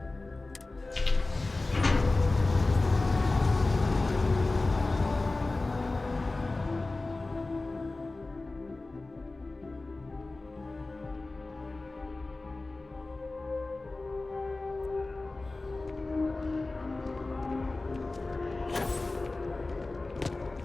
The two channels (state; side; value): quieter; right; 3.2 dB